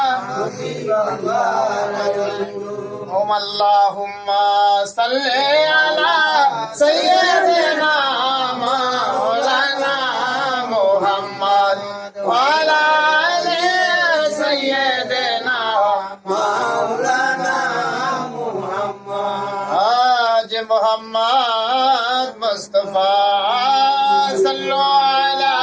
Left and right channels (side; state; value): both; identical; correlation 1.00